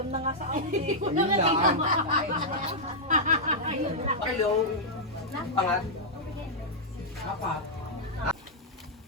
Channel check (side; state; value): both; normal; correlation -0.07